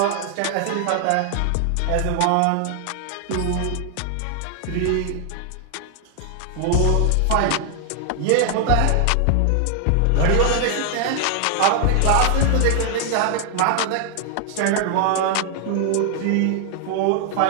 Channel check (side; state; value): both; different; correlation 0.00